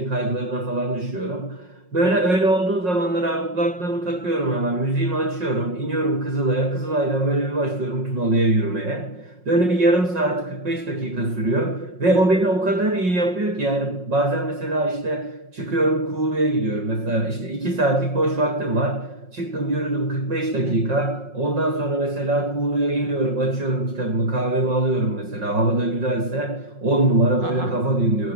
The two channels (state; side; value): late; left; 5.5 ms